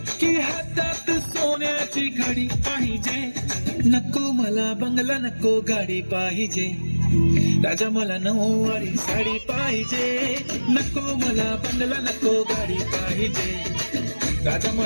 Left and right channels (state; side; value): inverted; both; correlation -1.00